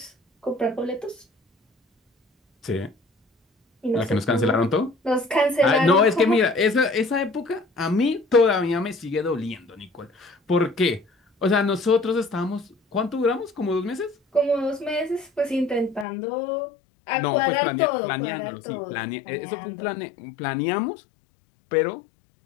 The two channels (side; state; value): right; drops out; at 16.1 s